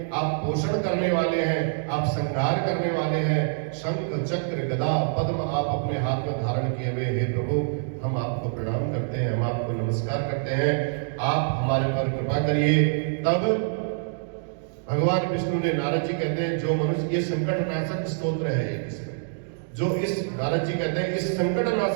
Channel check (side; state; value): left; silent; digital silence